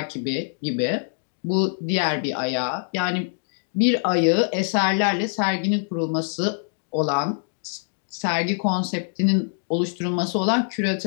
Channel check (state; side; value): silent; right; digital silence